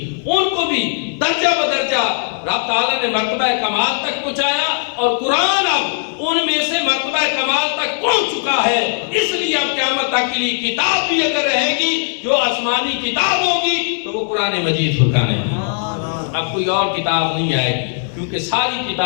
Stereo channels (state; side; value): silent; right; digital silence